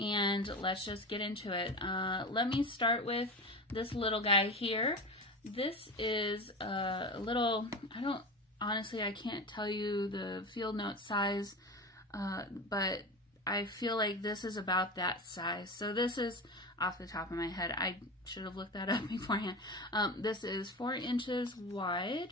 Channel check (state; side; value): normal; both; correlation 0.27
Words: let's just get into it. Let me start with this little guy here. This is a little, honestly, I can't tell you the field note size, but I feel like this is about that size. So this is, off the top of my head, I should have looked that up beforehand. This is 4 inches